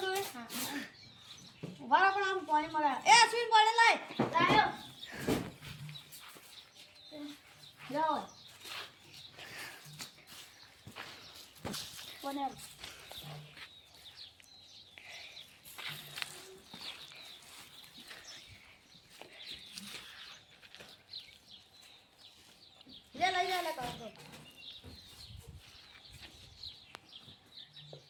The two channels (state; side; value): identical; both; correlation 1.00